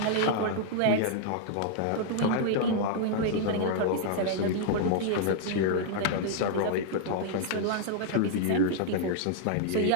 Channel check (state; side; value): different; both; correlation -0.01